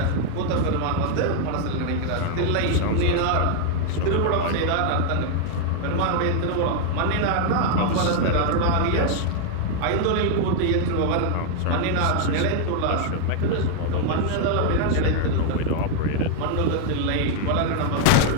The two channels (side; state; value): both; different; correlation 0.00